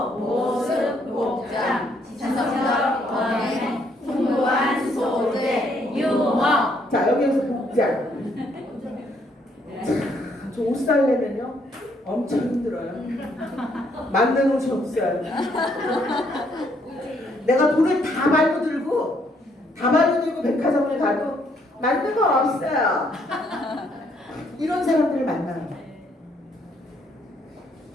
모습, 복장, 지성적 언행, 풍부한 소재, 유머. 자, 여기에서 복장. 저 옷 살려면요 엄청 힘들어요. 맞는 옷이 없어요. 내가 돈을 다 말고 들고 백화점을 가도 맞는 거 없어요. 이런 사람들을 만나요.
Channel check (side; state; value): both; normal; correlation 0.69